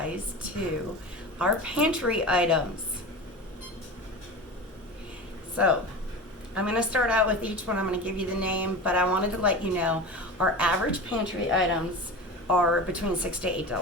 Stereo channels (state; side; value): normal; both; correlation 0.29